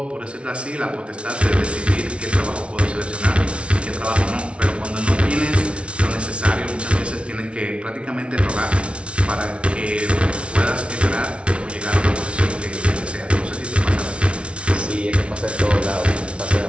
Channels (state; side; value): late; left; 0.060 ms